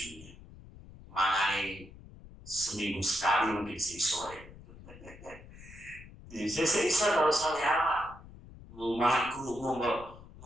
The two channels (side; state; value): left; noise; rumble, 18 dB below the sound